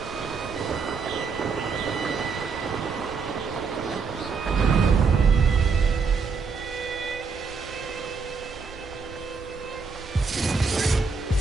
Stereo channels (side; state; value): left; quieter; 5.0 dB